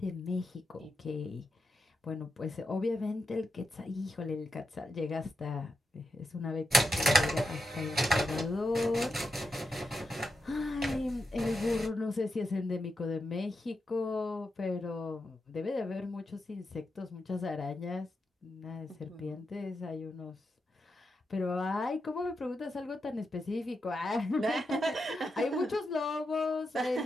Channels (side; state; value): both; normal; correlation 0.86